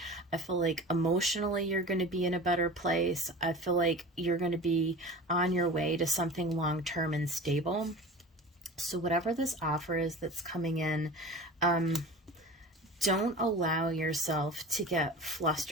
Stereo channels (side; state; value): both; normal; correlation 0.36